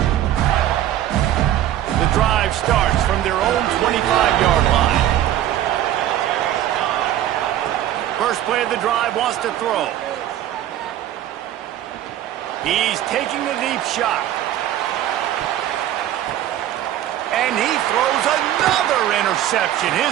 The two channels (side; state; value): left; quieter; 12.2 dB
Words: The drive starts from their own 25-yard line. First play of the drive, wants to throw. He's taking a deep shot. And he throws another interception,